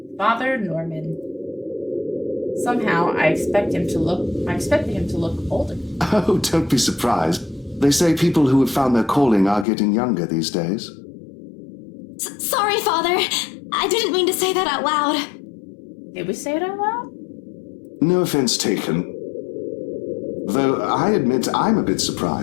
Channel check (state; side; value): drops out; right; at 9.7 s